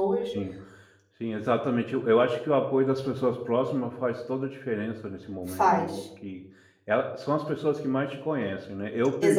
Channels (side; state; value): both; identical; correlation 1.00